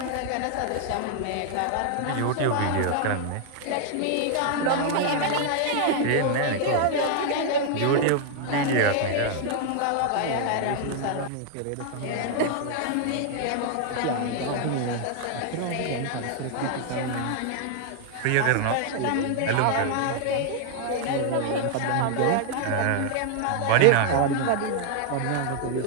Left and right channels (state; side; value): different; both; correlation 0.00